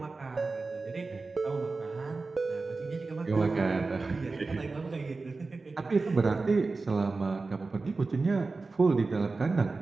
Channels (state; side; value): quieter; left; 3.8 dB